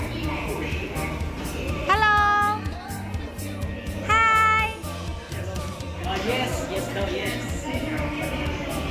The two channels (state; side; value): identical; both; correlation 1.00